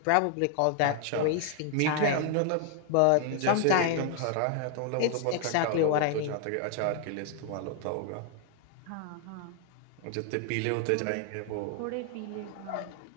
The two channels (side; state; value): both; different; correlation 0.00